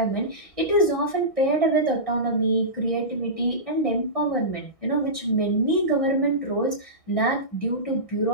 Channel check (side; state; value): right; late; 1.6 ms